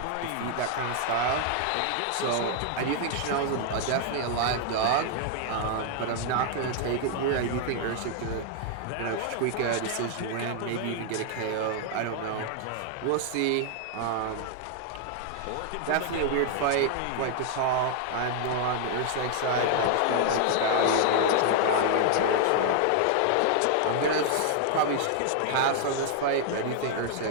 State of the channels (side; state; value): both; different; correlation 0.00